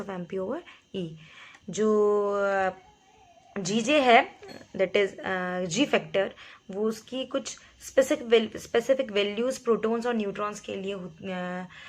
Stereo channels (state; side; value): identical; both; correlation 1.00